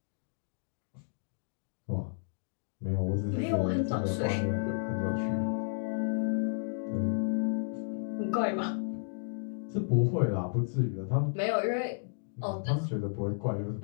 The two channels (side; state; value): right; silent; digital silence